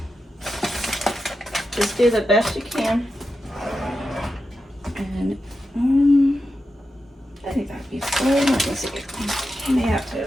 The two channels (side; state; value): both; normal; correlation 0.89